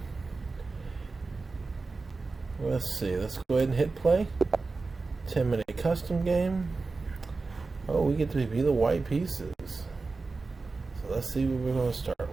Let's see, let's go ahead and hit play. 10-minute custom game. Oh, we get to be the white pieces. So let's see what we're going to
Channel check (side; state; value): left; quieter; 3.9 dB